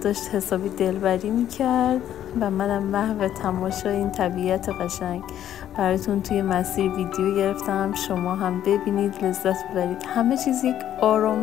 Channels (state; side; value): quieter; right; 11.1 dB